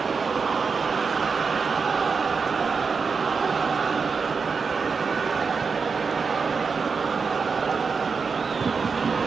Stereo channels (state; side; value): quieter; left; 5.2 dB